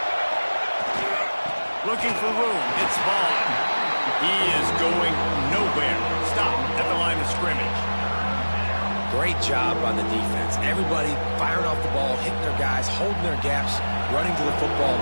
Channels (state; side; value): inverted; both; correlation -1.00